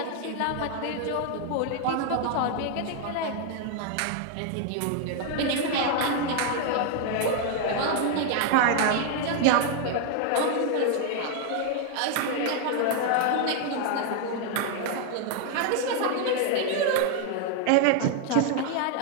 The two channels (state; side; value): different; both; correlation 0.00